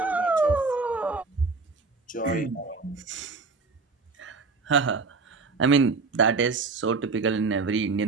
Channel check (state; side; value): quieter; left; 4.2 dB